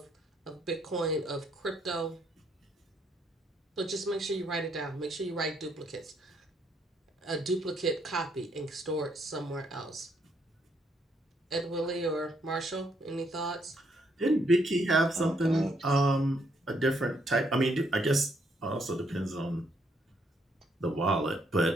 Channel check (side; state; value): both; normal; correlation 0.72